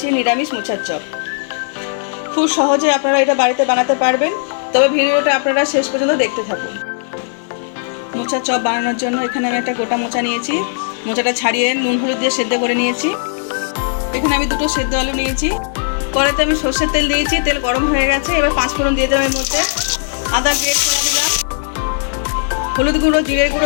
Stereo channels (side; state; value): right; silent; 62 dB below the other